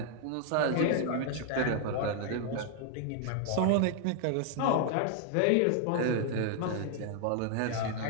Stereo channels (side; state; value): both; different; correlation 0.00